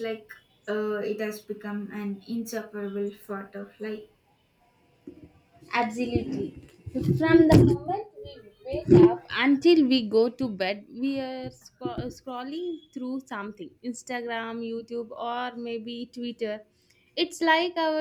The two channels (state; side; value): identical; both; correlation 1.00